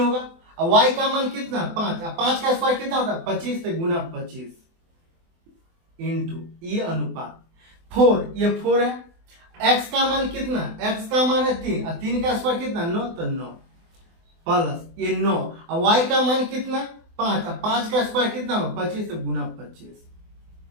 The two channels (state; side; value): late; left; 24 ms